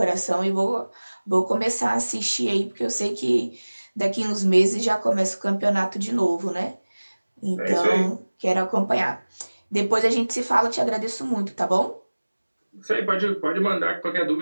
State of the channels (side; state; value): both; inverted; correlation -1.00